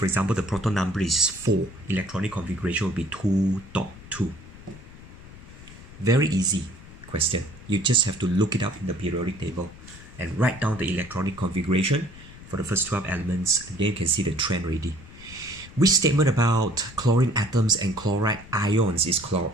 example the proton number is 4. Electronic configuration will be 2.2. Very easy question. You just have to look it up in the periodic table and write down the electronic configuration for the first 12 elements, and then you can see the trend already. Which statement about chlorine atoms and chloride ions is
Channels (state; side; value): noise; left; rumble, 18 dB below the sound